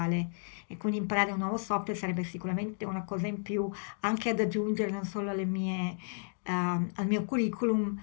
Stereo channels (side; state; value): right; silent; digital silence